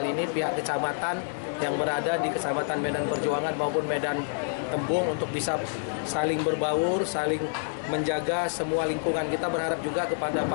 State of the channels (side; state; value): right; silent; digital silence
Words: ini pihak kecamatan yang berada di Kecamatan Medan Perjuangan maupun Medan Tembung untuk bisa saling berbaur, saling menjaga semua lingkungan. Kita berharap juga kepada